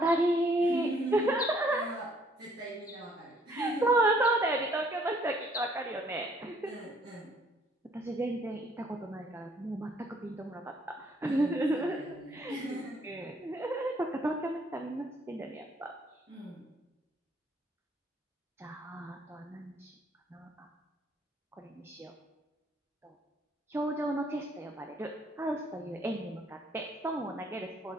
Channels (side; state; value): both; normal; correlation 0.63